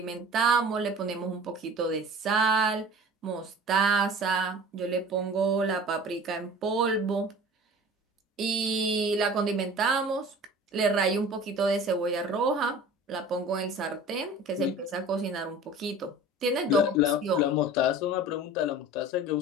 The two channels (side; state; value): both; normal; correlation 0.41